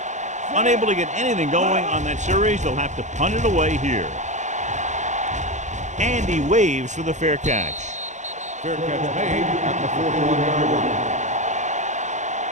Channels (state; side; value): late; left; 0.35 ms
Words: Unable to get anything going on that series, they'll have to punt it away here. And he waves for the fair catch. Fair catch made at the 41-yard line.